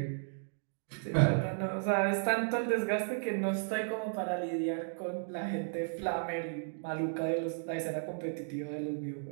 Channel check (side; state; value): left; silent; digital silence